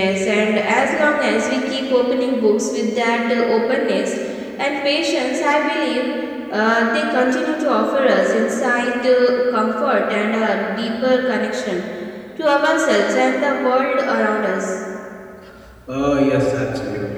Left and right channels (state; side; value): identical; both; correlation 1.00